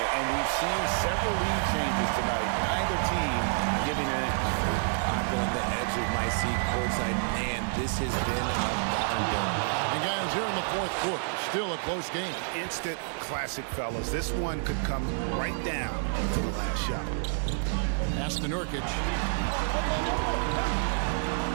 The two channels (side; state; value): left; silent; 58 dB below the other